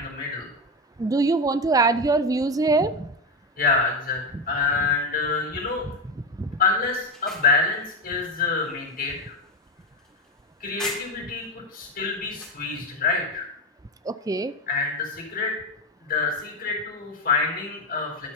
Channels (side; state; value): both; normal; correlation 0.14